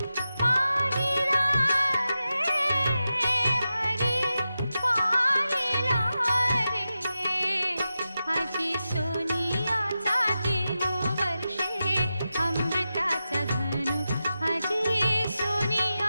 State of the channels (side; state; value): both; inverted; correlation -0.91